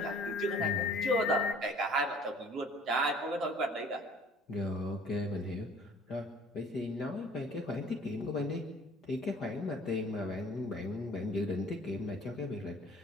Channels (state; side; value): normal; both; correlation 0.52